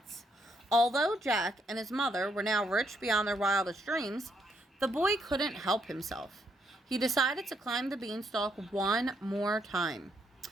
Although Jack and his mother were now rich beyond their wildest dreams, the boy couldn't help himself. He decided to climb the beanstalk one more time.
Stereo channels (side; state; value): both; normal; correlation 0.75